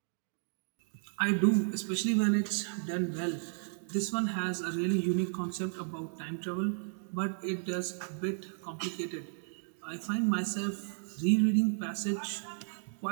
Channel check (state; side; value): silent; left; digital silence